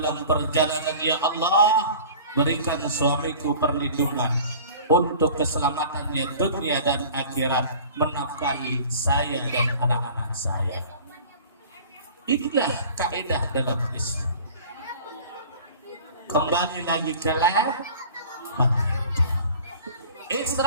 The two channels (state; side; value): inverted; both; correlation -0.43